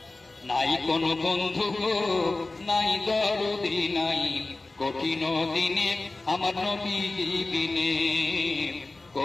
নাই কোনো বন্ধু গো, নাই দরদি নাই, কঠিন দিনে আমার নবীজি বিনে,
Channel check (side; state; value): right; quieter; 3.2 dB